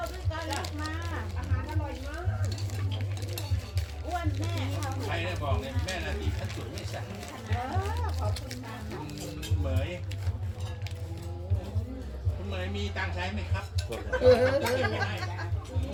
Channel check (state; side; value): identical; both; correlation 1.00